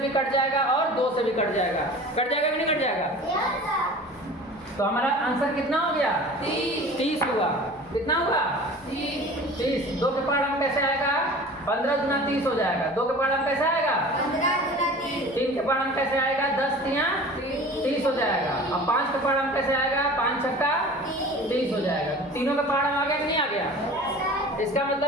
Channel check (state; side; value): normal; both; correlation 0.40